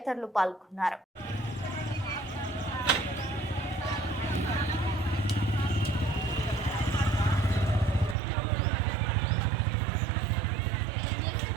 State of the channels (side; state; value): left; drops out; at 8.2 s